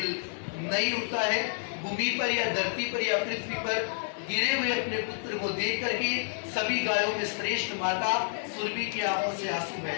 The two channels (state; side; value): silent; right; digital silence